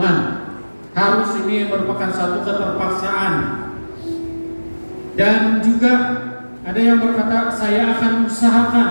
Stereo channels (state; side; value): inverted; both; correlation -1.00